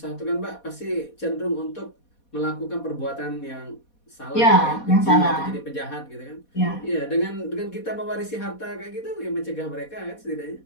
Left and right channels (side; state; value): right; late; 4.2 ms